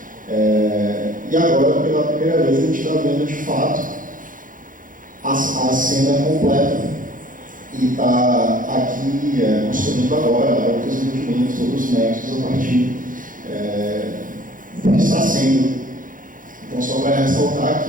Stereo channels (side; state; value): left; late; 0.39 ms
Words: e agora, pela primeira vez, a gente está vendo de fato a cena completa, e está aqui construindo agora outros entendimentos, outros nexos a partir do que está sendo. Então, só para ressaltar